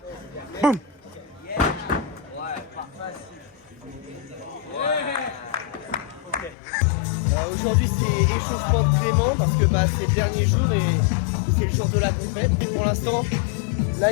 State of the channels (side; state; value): right; drops out; at 6.6 s